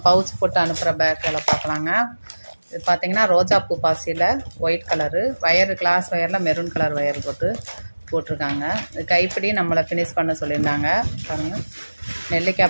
பவுச் போட்டு அனுப்புகிற பேக்கில் பார்க்கலாங்க. இது பார்த்தீங்கன்னா ரோஜா பூ பாசியில் ஒயிட் கலரு வயர், கிளாஸ் வயரில் மெரூன் கலர் வயர் போட்டிருக்காங்க. இது கைப்பிடி நம்மளை ஃபினிஷ் பண்ண சொல்லியிருந்தாங்க. பாருங்கள்,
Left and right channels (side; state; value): both; inverted; correlation -1.00